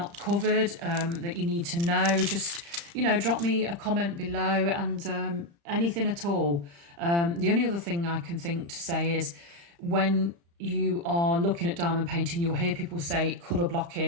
covered that you need to know, just drop me a comment below, and anything at all. The only other thing I can think to say is, when you are looking at diamond painting, you'll hear people say colour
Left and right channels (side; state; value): left; late; 35 ms